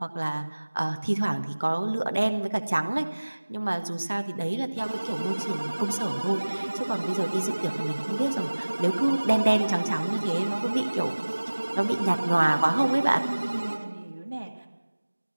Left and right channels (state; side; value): inverted; both; correlation -1.00